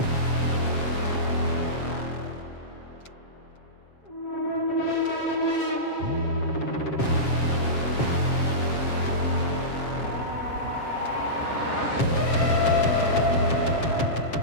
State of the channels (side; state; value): right; late; 7.3 ms